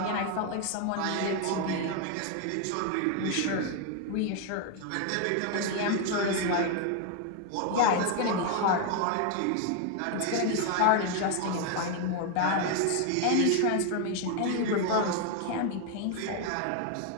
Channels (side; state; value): both; different; correlation 0.01